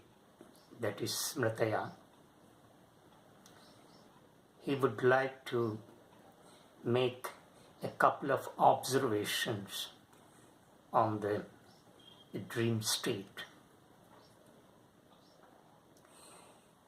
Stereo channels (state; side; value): identical; both; correlation 1.00